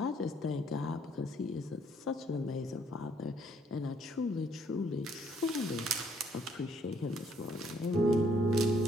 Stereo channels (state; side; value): normal; both; correlation 0.67